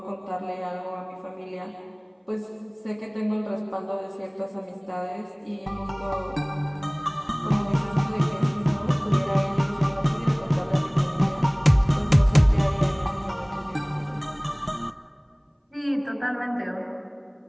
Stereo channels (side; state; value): both; identical; correlation 1.00